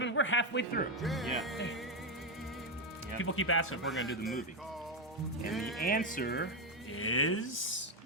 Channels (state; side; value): normal; both; correlation 0.07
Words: We're halfway through. Yeah. People keep asking if we're going to do the movie. And the answer is